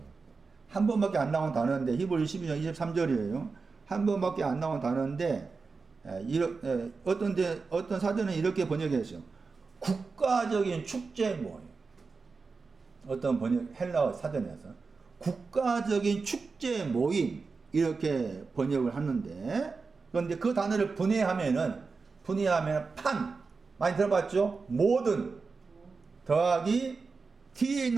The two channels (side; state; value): left; quieter; 4.5 dB